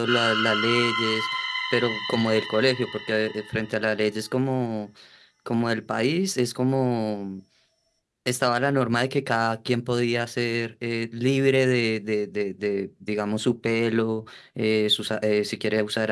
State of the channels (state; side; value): identical; both; correlation 1.00